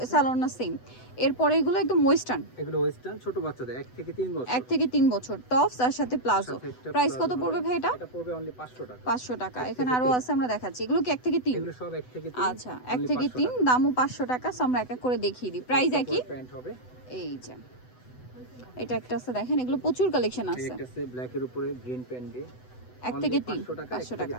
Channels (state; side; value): late; right; 8.0 ms